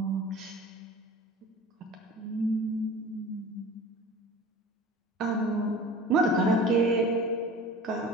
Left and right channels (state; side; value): normal; both; correlation 0.40